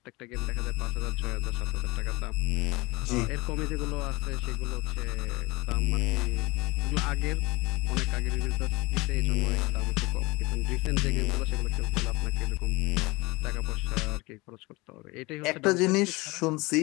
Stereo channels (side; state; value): right; quieter; 23.7 dB